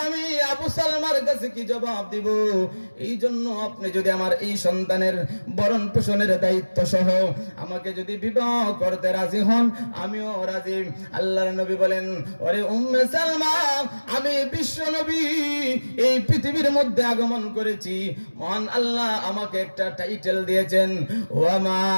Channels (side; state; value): both; inverted; correlation -1.00